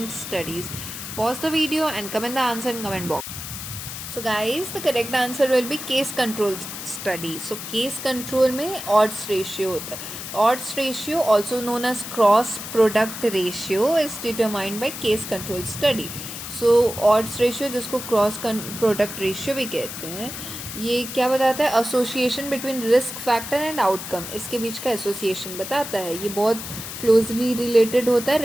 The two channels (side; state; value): left; noise; hiss, 8 dB below the sound